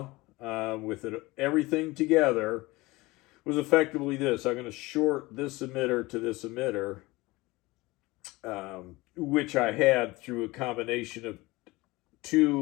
with everything together was effectively this. I'm going to short this emitter to this emitter, which I had through a combination of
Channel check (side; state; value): right; quieter; 21.4 dB